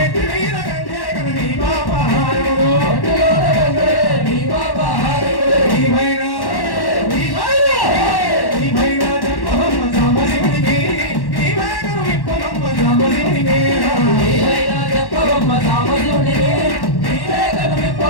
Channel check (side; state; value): right; late; 1.1 ms